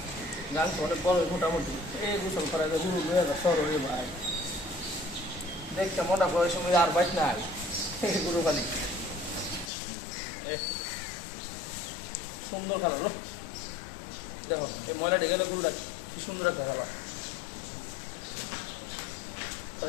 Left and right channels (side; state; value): right; drops out; at 9.7 s